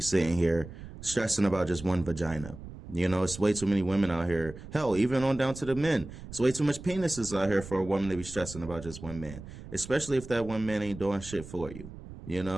here stressing about just one vagina. It's way too many women out here. Hell, even on down to the men. It's way too much penises out here for a woman to be stressing about just one man. Especially if that one man ain't doing shit for you.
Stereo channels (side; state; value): right; noise; rumble, 14 dB below the sound